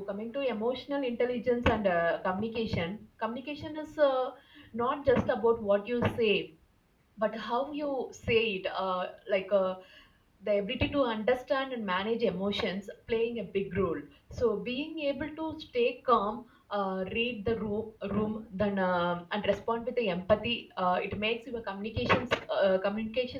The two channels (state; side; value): identical; both; correlation 1.00